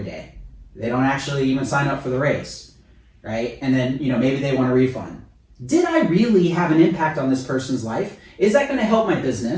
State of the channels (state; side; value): identical; both; correlation 1.00